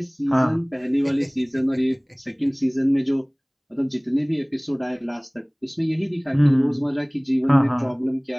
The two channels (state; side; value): identical; both; correlation 1.00